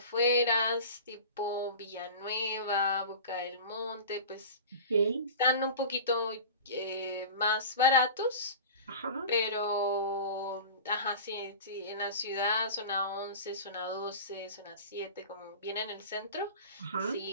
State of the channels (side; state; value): both; inverted; correlation -0.34